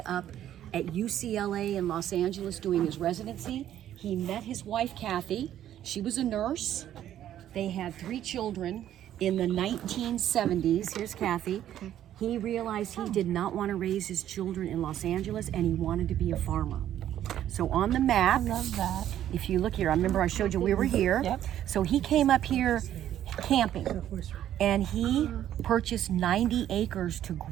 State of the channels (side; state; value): left; quieter; 11.4 dB